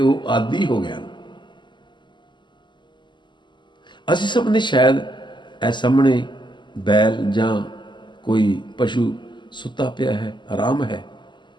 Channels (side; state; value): right; late; 0.22 ms